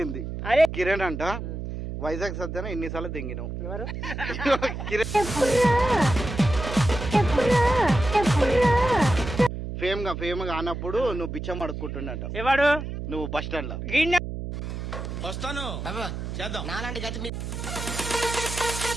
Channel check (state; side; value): noise; right; hum, 6 dB below the sound